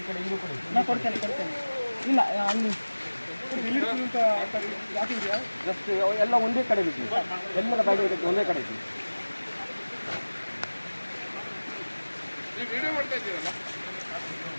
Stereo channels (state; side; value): inverted; both; correlation -1.00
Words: ಕಡೆ ಇದು ಕೊಡಿ. ನಾನು ಕೊಡ್ತೇನೆ ಇಲ್ಲ ಅಲ್ಲಿ ಜಸ್ಟ್ ಎಲ್ಲ ಒಂದೇ ಕಡೆ ಬಿಟ್ಟು ಎಲ್ಲರ ಬ್ಯಾಗ್ ಇದಕ್ಕೆ ಒಂದೇ ಕಡೆ ಇತ್ತು.